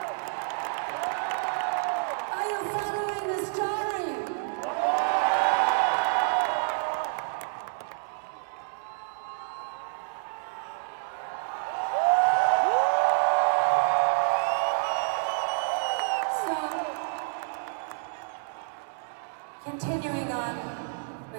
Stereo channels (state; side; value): silent; left; digital silence